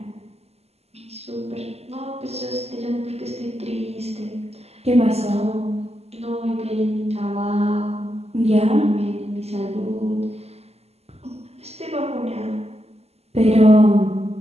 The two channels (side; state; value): left; late; 0.30 ms